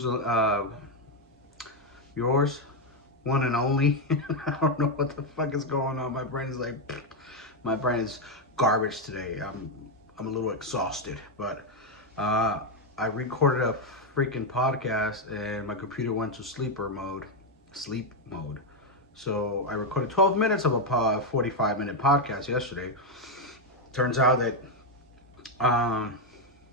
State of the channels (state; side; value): normal; both; correlation 0.04